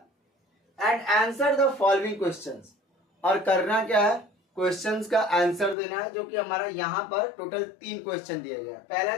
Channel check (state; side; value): drops out; right; at 5.8 s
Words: And answer the following questions, और करना क्या है? क्वेश्चंस का आंसर देना है, जो कि हमारा यहाँ पर टोटल 3 क्वेश्चन दिया गया है. पहला